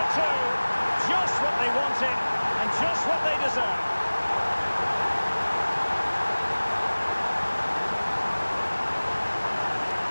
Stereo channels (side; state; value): both; inverted; correlation -1.00